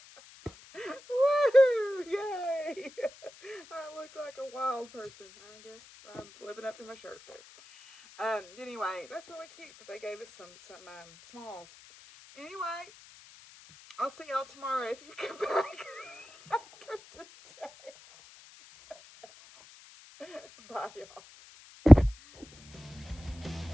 Woo! Yay! I look like a wild person. I guess I'm living up to my shirt there. Anyway, that's really cute that they gave us some smalls. Anyway, I'll see y'all tomorrow if you come back after today. Bye, y'all.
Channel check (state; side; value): noise; left; hiss, 23 dB below the sound